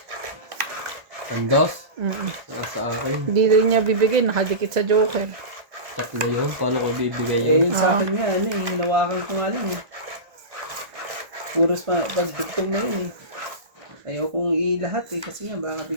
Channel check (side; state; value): left; late; 1.5 ms